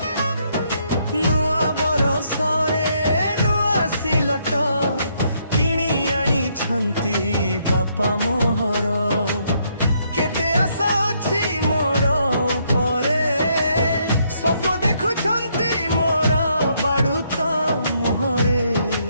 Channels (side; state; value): both; inverted; correlation -0.73